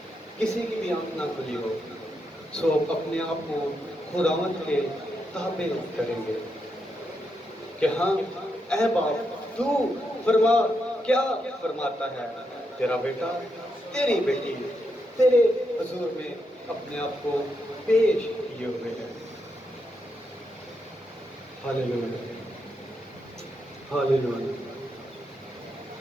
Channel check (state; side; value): normal; both; correlation 0.83